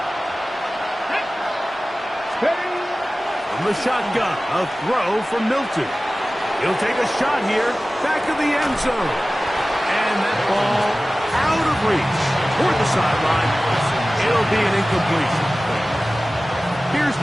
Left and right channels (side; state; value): both; normal; correlation 0.97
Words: From the shotgun, a throw from Milton. He'll take a shot here, back of the end zone. And that ball out of reach toward the sideline. It'll be an incompletion. Here's